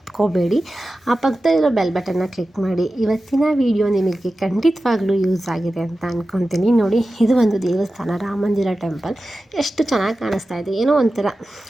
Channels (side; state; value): both; normal; correlation 0.94